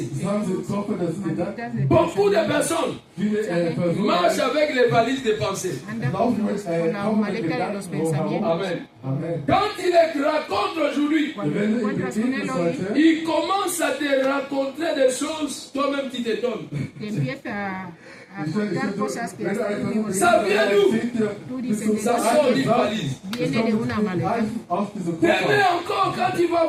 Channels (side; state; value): both; identical; correlation 1.00